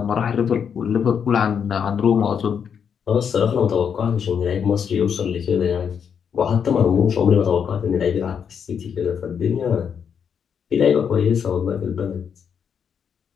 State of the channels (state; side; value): quieter; right; 7.4 dB